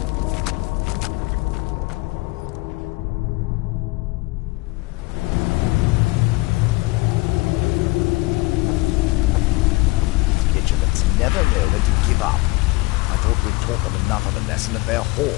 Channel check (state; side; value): quieter; right; 22.9 dB